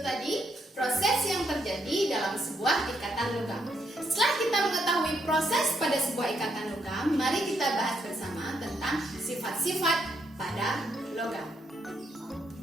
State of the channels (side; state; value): both; normal; correlation 0.76